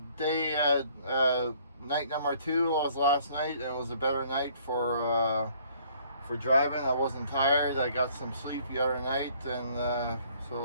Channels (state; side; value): inverted; both; correlation -0.60